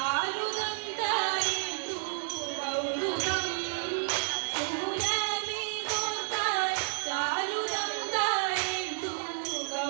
തായേന്ദു കൗതുകം സൂനമേ തോർത്താൽ ചാരുദം തായേന്ദു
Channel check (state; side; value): silent; left; 57 dB below the other